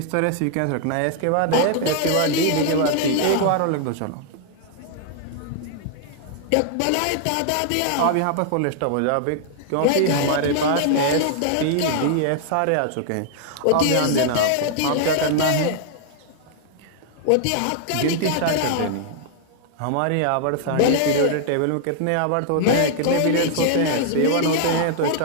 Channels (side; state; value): both; different; correlation -0.01